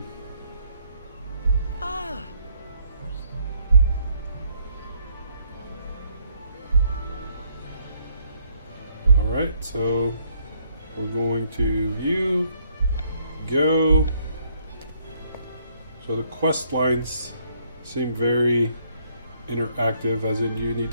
Alright, so we're going to view, go. So the quest lines seem very interactive, as in you need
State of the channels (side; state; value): both; inverted; correlation -0.68